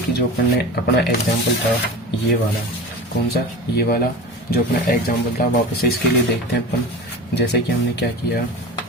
जो अपन ने अपना एग्जाम्पल था ये वाला, कौन सा, ये वाला जो अपना एग्जाम्पल था, वापस से इसके लिए देखते हैं अपन। जैसे कि हमने क्या किया,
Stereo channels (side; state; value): both; normal; correlation 0.32